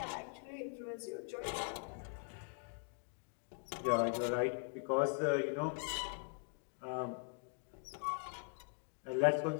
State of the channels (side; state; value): right; quieter; 37.1 dB